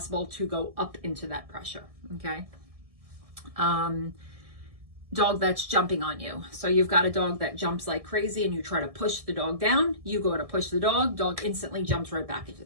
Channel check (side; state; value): left; late; 1.6 ms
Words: to go up into that pressure, okay? dog that's jumping on you. So you've got a dog that jumps like crazy and you try to push the dog down. You go to push the dog instantly jumps right back